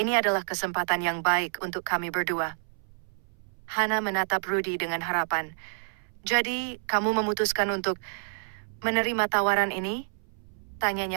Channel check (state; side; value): silent; left; 59 dB below the other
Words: adalah kesempatan yang baik untuk kami berdua." Hana menatap Rudy dengan harapan. "Jadi, kamu memutuskan untuk menerima tawaran ini?"